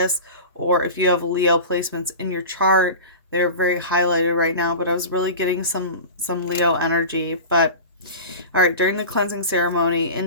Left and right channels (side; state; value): both; inverted; correlation -0.33